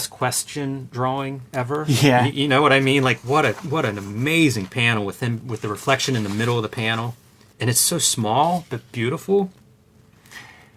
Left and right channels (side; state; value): both; identical; correlation 1.00